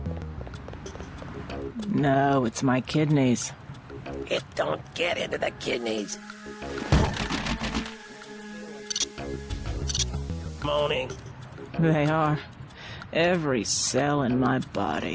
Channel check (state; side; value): identical; both; correlation 1.00